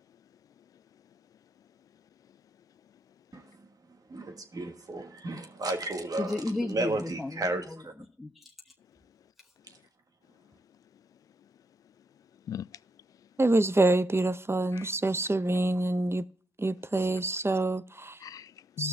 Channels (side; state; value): both; normal; correlation 0.80